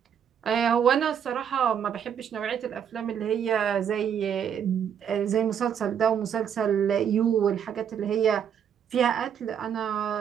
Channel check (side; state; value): left; quieter; 8.4 dB